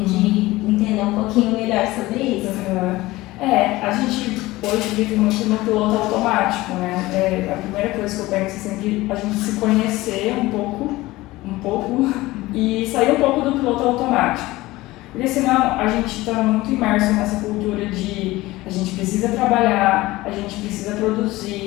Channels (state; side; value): quieter; right; 18.9 dB